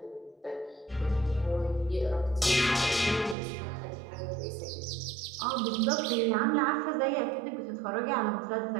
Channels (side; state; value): left; drops out; at 3.4 s